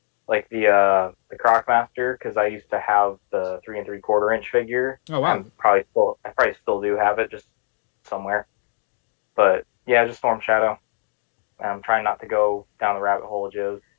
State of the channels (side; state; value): right; silent; 64 dB below the other